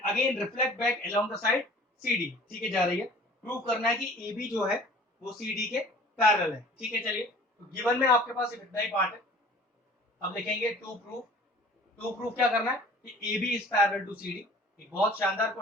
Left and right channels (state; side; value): normal; both; correlation 0.48